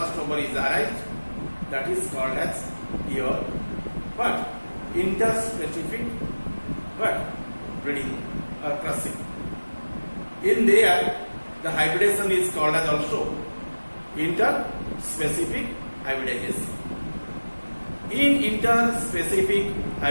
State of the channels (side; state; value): both; inverted; correlation -1.00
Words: is arised, that is called as your what? Interspecific what? Breeding or crossing. In there, the hybridization is called as also interspecific hybridization. In interspecific